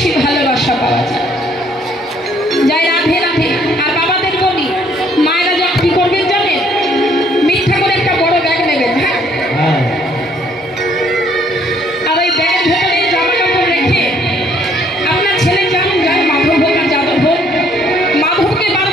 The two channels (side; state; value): both; normal; correlation 0.64